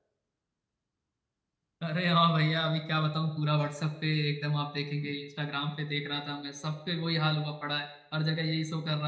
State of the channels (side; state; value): both; identical; correlation 1.00